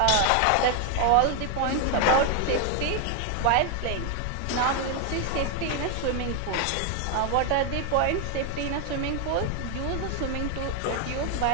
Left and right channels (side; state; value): both; different; correlation 0.01